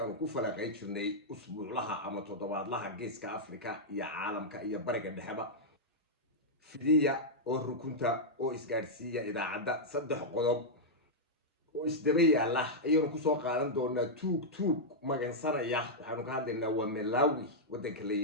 ku falaqay jirnay usbuuclaha ama toddobaadlaha geeska Afrika iyo caalamka iyo bariga dhexeba fidiya oo rukunta oo isgaarsiiya idaacadda saddex qodob oo isdaba yaala ayaynu ku soo qaadan doonaa tuug magansanaya waxaanu ka hadlaynaa waa Malawi wadanka la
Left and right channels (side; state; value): both; normal; correlation -0.06